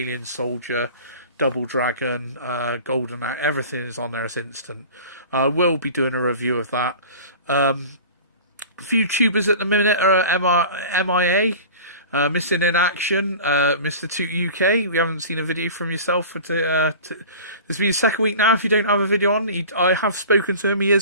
Soldier, Double Dragon, Golden Axe, everything is on there as instant. We'll be doing a review of that. A few tubers at the minute are MIA, missing in action. Mr. Toot UK, we haven't seen a video from yourself for this will be the second week now if you don't have a video on. I have spoken to him, he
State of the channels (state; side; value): inverted; both; correlation -0.38